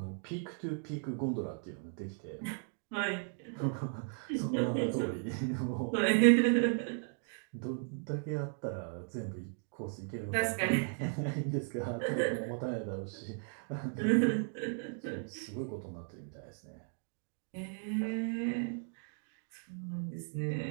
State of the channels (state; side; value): silent; left; 54 dB below the other